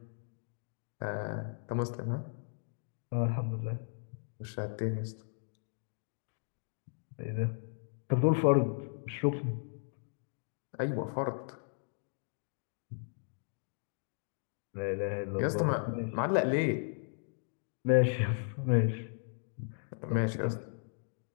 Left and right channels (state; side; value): silent; right; digital silence